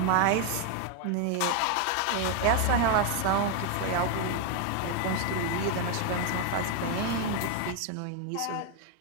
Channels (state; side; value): different; both; correlation 0.01